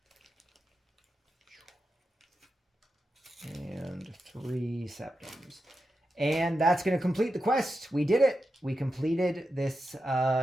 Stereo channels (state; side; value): normal; both; correlation 0.89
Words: and 3 septums. And that's going to complete the quest. We did it. We completed this